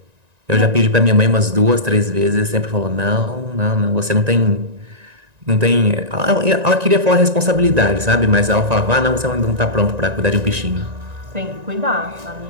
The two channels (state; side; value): late; left; 1.9 ms